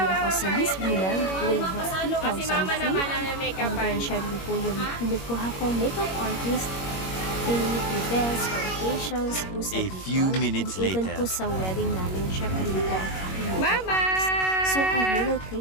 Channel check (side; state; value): right; late; 21 ms